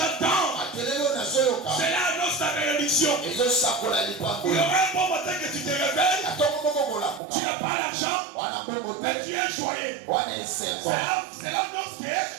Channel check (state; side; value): drops out; left; at 7.2 s